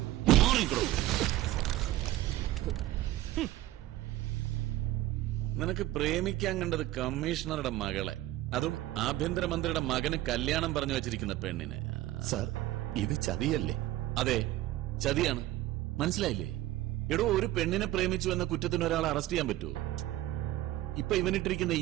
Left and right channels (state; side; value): quieter; left; 15.5 dB